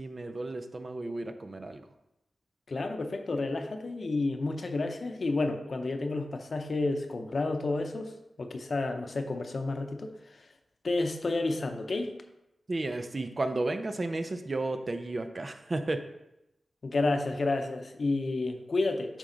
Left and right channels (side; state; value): both; normal; correlation 0.94